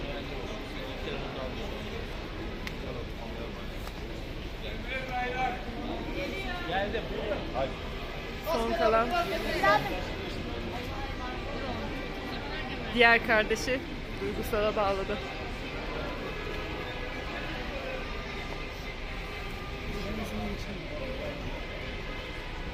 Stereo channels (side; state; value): both; identical; correlation 1.00